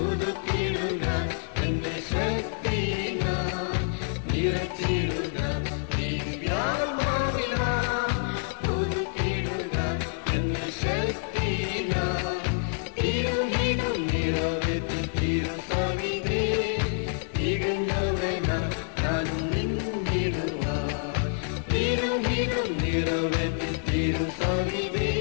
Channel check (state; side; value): silent; right; 60 dB below the other